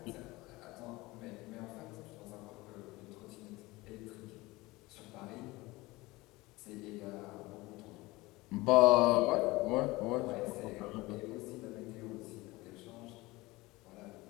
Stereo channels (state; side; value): quieter; right; 20.6 dB